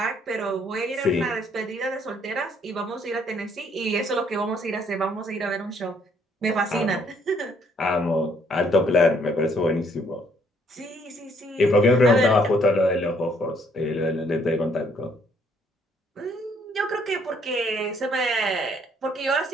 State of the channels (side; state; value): both; normal; correlation 0.66